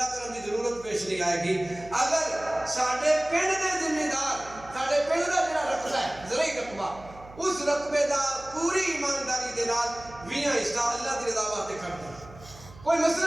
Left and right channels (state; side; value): noise; right; hum, 19 dB below the sound